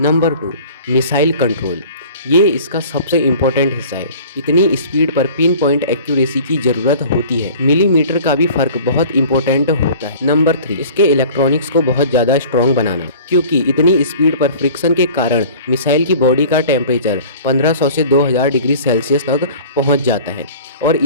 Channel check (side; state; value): both; inverted; correlation -0.44